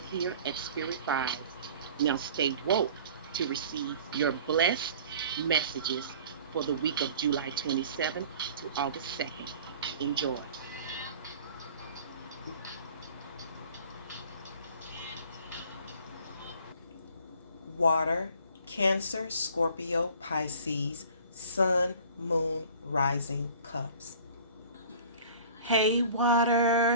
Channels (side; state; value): both; inverted; correlation -0.48